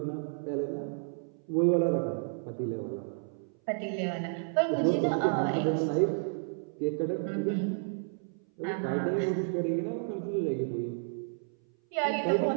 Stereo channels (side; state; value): left; silent; 57 dB below the other